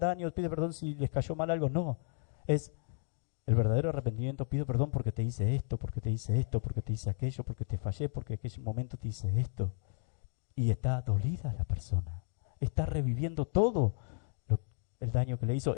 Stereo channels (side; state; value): right; silent; digital silence